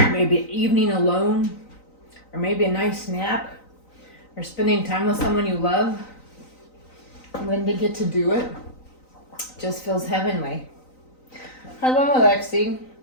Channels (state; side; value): late; right; 3.9 ms